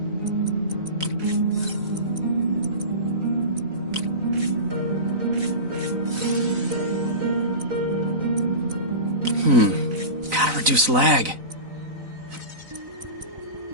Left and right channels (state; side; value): late; left; 4.0 ms